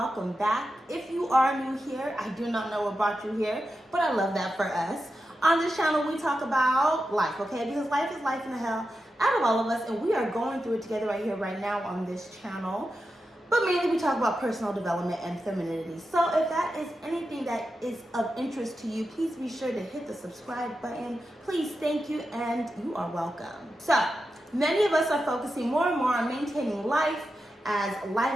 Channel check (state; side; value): normal; both; correlation 0.90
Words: back. If you are new here, I do not know what brought you here, but I love that for us. On this channel, we talk about life, okay? Because life is life in the hell out of all of us, and we are going through it together right here, right now on this channel. But mainly we talk about personal development and femininity. So if that is anything that is of interest to you, please be sure to hit the subscribe button. Please, thank you, and you are welcome. So many of us are focusing more and more on maintaining life as